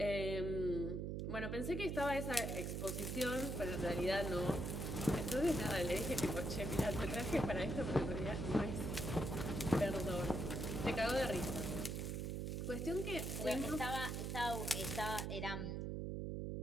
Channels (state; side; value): noise; right; hum, 2 dB below the sound